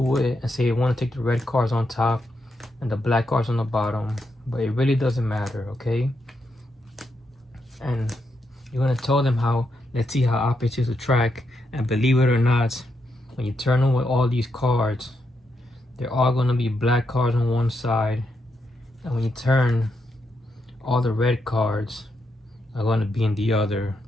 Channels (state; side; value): normal; both; correlation 0.82